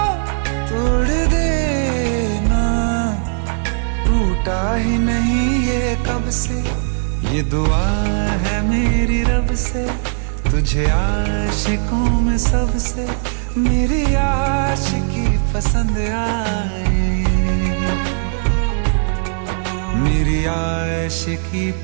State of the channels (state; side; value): silent; left; digital silence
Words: तोड़ देना, टूटा ही नहीं ये कब से। ये दुआ है मेरी रब से, तुझे आशिकों में सबसे मेरी आशिकी पसंद आए, मेरी आशिकी